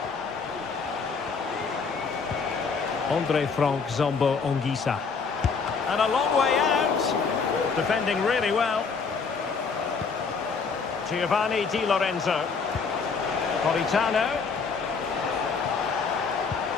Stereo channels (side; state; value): right; quieter; 5.1 dB